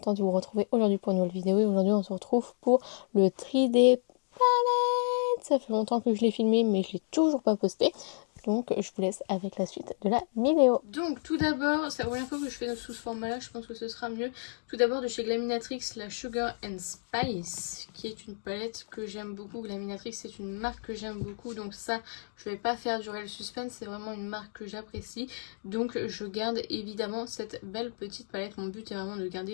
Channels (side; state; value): right; silent; digital silence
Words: de vous retrouver aujourd'hui pour une nouvelle vidéo. Et aujourd'hui on se retrouve pour le 3D palette. Ça fait longtemps que je l'ai filmé mais je l'ai toujours pas posté. Donc je vous laisse avec la suite de la vidéo. Donc tout d'abord, c'est la première fois que je fais sous ce format là, je pense que ce sera mieux. Tout d'abord de chez Glaminatrix, la Sugar and Spice, qui est une palette que j'aime beaucoup. Glaminatrix c'est une marque que j'aime beaucoup, donc ça je vais pas faire durer le suspense, c'est vraiment une marque que j'apprécie. Donc je garde évidemment cette belle petite palette, mon but est vraiment de